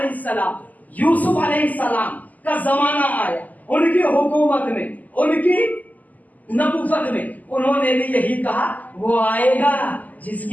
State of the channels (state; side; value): late; right; 0.080 ms